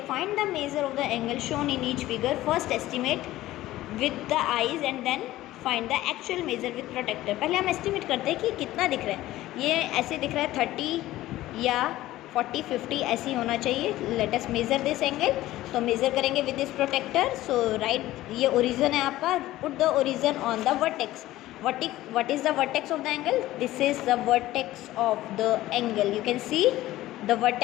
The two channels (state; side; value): quieter; right; 15.8 dB